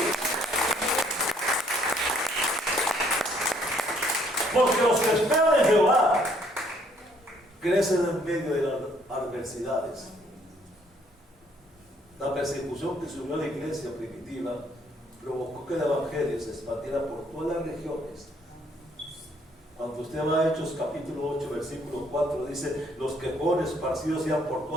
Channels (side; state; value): both; normal; correlation 0.65